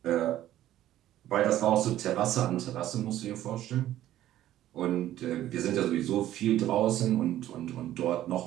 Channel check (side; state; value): left; quieter; 13.1 dB